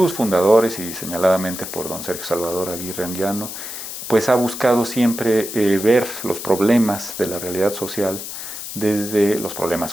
fundadores y señaladamente por don Sergio Salvador Aguirre Anguiano, pues ha buscado siempre ver los problemas de la realidad social desde los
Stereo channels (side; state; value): left; noise; hiss, 8 dB below the sound